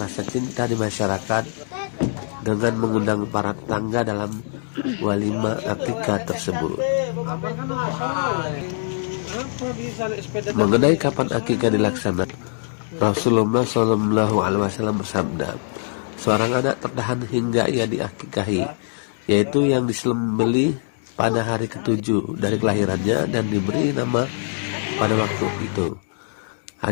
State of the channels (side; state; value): right; silent; digital silence